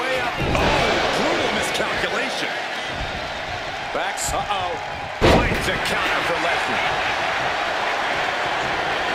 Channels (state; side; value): identical; both; correlation 1.00